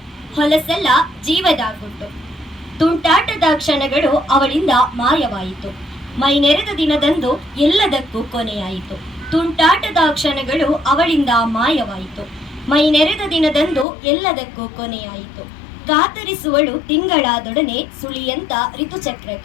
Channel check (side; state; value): right; drops out; at 13.9 s